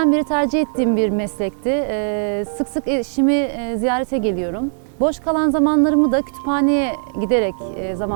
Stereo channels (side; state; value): left; silent; digital silence